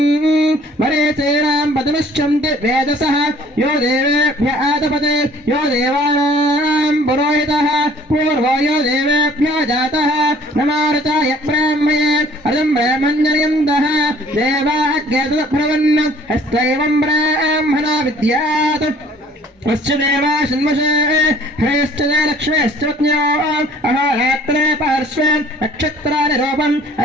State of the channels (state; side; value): normal; both; correlation 0.54